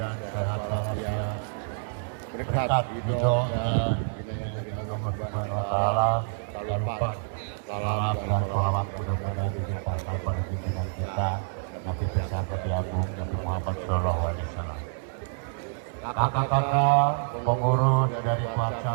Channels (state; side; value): silent; left; digital silence